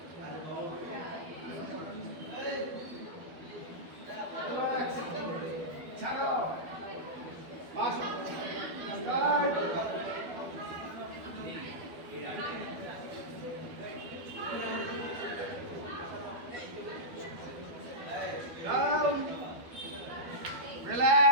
ছাড়ো, পাশ, স্টার্ট। Down,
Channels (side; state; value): left; late; 12 ms